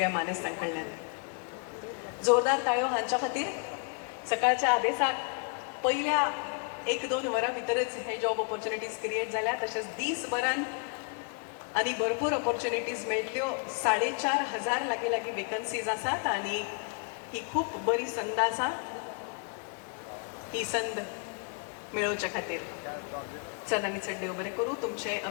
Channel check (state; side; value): quieter; right; 38.6 dB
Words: मानेस्तां कडल्यान. जोरदार ताळयो हांच्या खातीर. सकाळच्या आदेसाक पयल्या 1-2 वरां भितरच हे जॉब ऑपॉर्च्युनिटीज क्रिएट जाल्या. तशेंच दीसभरान आनी भरपूर ऑपॉर्च्युनिटीज मेळटल्यो. 4,500 लागीं वेकन्सीज आसात आनी ही खूब बरी संद आसा ही संद मेळोवचे खातीर. चल आनी चड देव बरें करूं. तुमचे